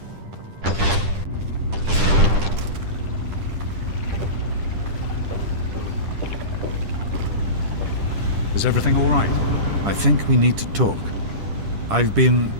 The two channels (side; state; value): left; late; 10 ms